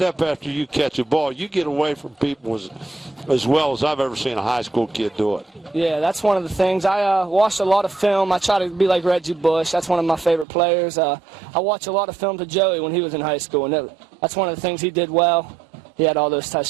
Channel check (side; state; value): left; drops out; at 10.5 s